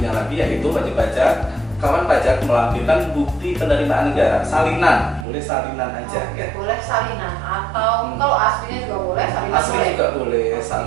lagi yaitu wajib pajak kawan pajak melampirkan bukti penerimaan negara, salinan, boleh salinan aja Oke, ya. boleh salinan atau kalau aslinya juga boleh, salinan Asli boleh. juga boleh, Oke.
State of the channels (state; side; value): drops out; left; at 5.2 s